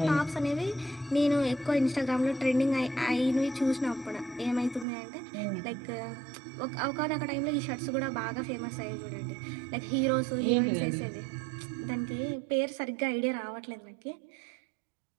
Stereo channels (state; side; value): drops out; left; at 4.9 s